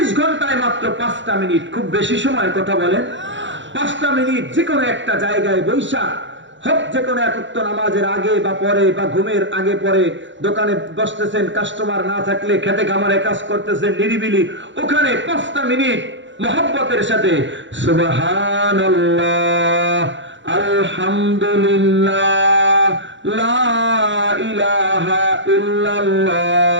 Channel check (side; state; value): left; late; 0.54 ms